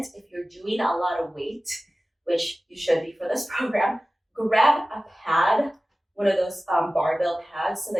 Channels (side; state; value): both; normal; correlation 0.96